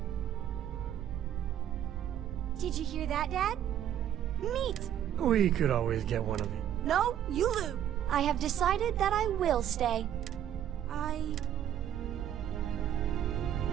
Did you hear that, Dad? Meat! We could always get one of you. No, you lose. I have decided that I will stay.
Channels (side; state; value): left; quieter; 10.7 dB